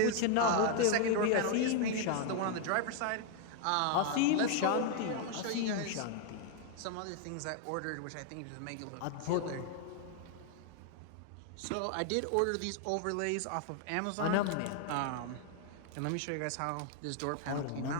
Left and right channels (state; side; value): different; both; correlation 0.00